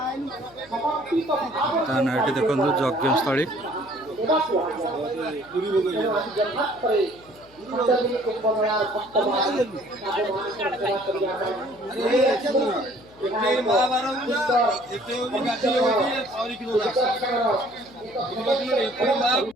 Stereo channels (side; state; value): left; noise; hum, 26 dB below the sound